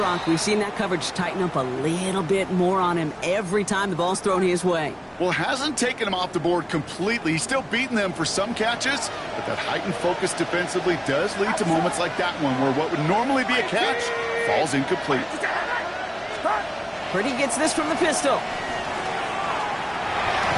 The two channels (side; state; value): both; identical; correlation 1.00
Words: We've seen that coverage tighten up a little bit more on him every time the ball's thrown his way. Well, hasn't taken him off the board completely. He's still beating them for some catches, but that heightened focus defensively does lead to moments like that one where what would normally be a catch falls incomplete. Purdy gets this from the pistol.